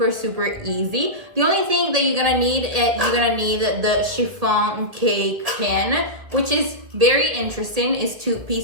easy. The only thing that you're gonna need the chiffon cake pan, which is very interesting. It's 2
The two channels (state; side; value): late; left; 2.0 ms